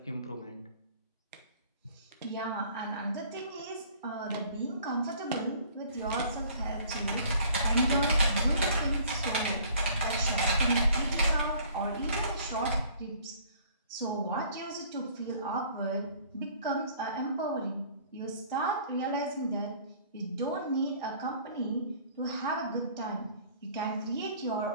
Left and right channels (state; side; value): inverted; both; correlation -0.54